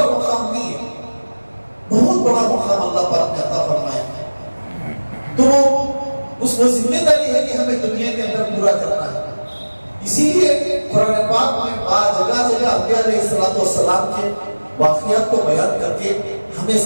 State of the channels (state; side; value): inverted; both; correlation -1.00